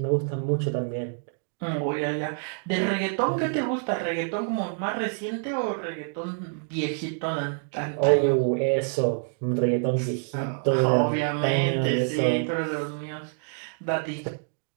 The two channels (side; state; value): left; silent; 60 dB below the other